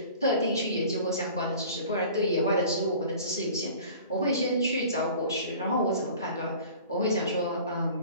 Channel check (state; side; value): inverted; both; correlation -0.44